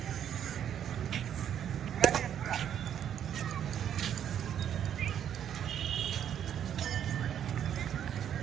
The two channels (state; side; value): quieter; left; 9.5 dB